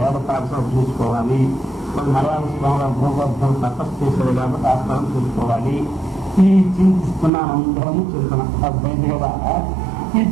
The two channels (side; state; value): left; drops out; at 7.3 s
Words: వేద పాఠశాల చూసుకోవాలి, కొన్ని మలయాళ భూగర్భం తపస్సు చేసేది కాబట్టి ఆ స్థలం చూసుకోవాలి. ఈ చింతిస్తున్నాం, అందరము చూస్తున్నాం. అర్థమైంది కదా? ఈ